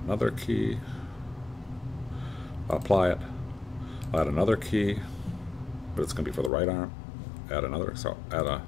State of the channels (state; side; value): drops out; right; at 6.5 s